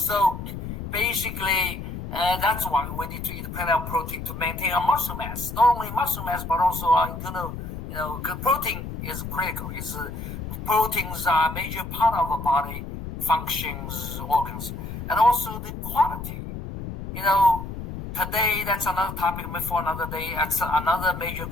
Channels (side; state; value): left; noise; rumble, 8 dB below the sound